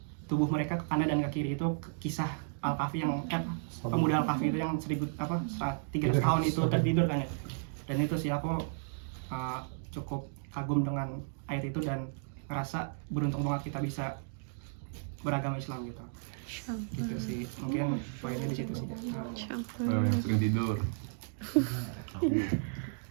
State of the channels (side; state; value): left; silent; digital silence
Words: tubuh mereka ke kanan dan ke kiri. Itu kisah Al-Kahfi yang pemuda Al-Kahfi itu yang 300 tahun itu tertidur kan ya. Dan itu sih aku cukup kagum dengan ayat itu dan ngerasa beruntung banget kita bisa beragama Islam gitu. Gitu sih, mungkin poinnya di situ sih. Yang sering tidur.